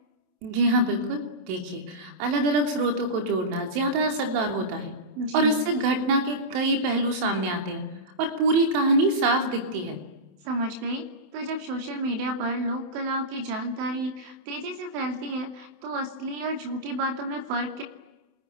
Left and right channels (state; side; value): late; left; 27 ms